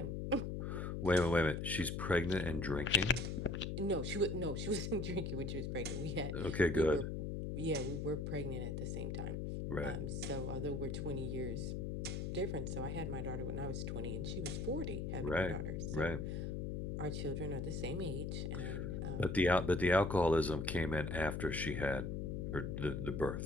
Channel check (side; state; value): left; noise; hum, 3 dB below the sound